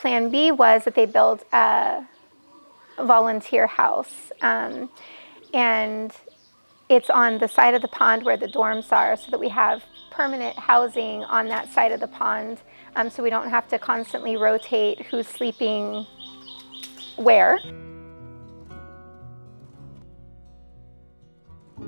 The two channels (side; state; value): both; inverted; correlation -1.00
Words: B was that they built a volunteer house, and it's on the side of the pond where the dorms are, so that we have permanent housing on that side of the pond, so we don't have to constantly rotate who's sleeping where.